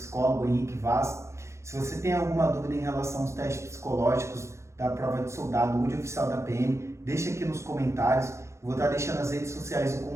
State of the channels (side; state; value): left; late; 0.14 ms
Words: Henrique Vaz. Se você tem alguma dúvida em relação aos testes psicológicos da prova de soldado ou de oficial da PM, deixa aqui nos comentários. Eu vou estar deixando nas redes sociais o